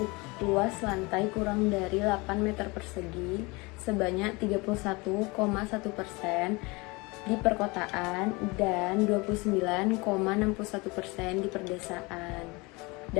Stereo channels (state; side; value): quieter; right; 25.7 dB